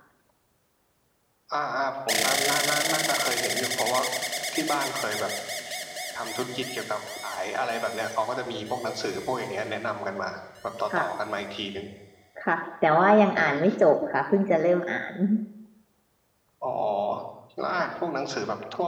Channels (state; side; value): identical; both; correlation 1.00